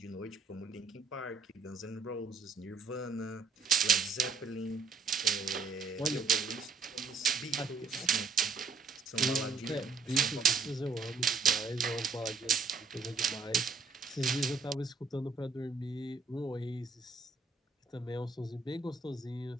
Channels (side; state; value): left; quieter; 4.6 dB